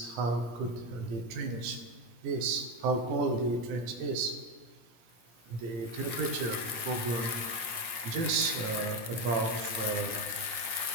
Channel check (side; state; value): left; late; 17 ms